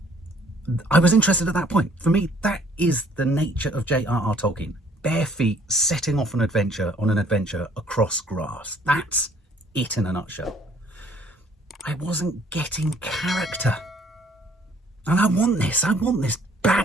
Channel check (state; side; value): normal; both; correlation 0.60